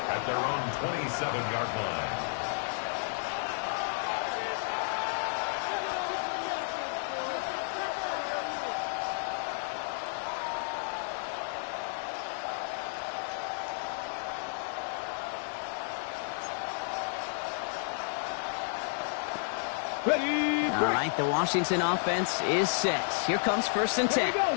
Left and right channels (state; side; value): silent; right; 57 dB below the other